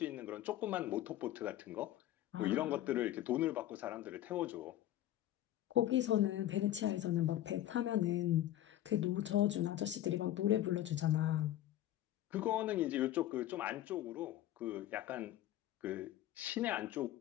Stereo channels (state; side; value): quieter; right; 13.2 dB